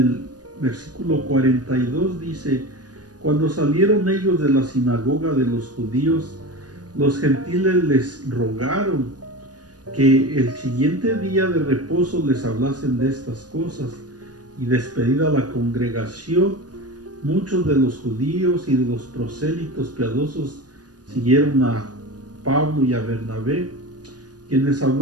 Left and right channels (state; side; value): late; left; 0.69 ms